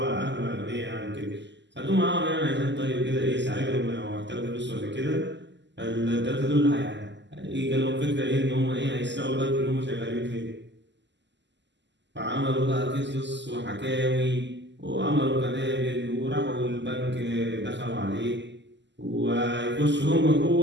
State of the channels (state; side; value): late; left; 0.52 ms